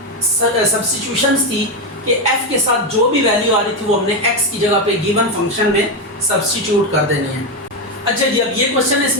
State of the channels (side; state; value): both; normal; correlation 0.10